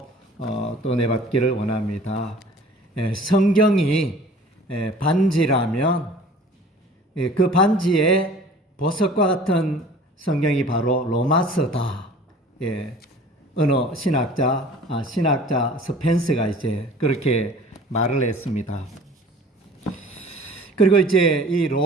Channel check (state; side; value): normal; both; correlation 0.47